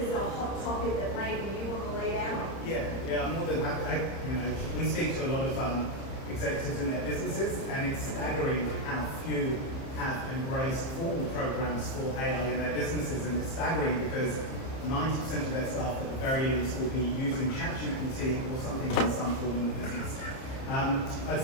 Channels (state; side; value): late; right; 30 ms